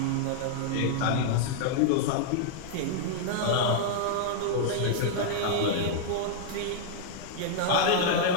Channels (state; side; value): different; both; correlation -0.01